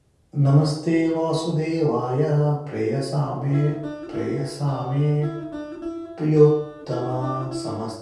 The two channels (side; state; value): both; identical; correlation 1.00